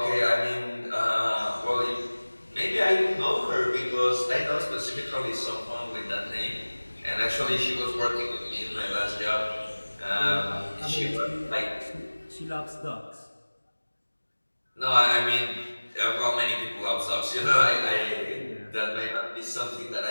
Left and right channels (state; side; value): inverted; both; correlation -1.00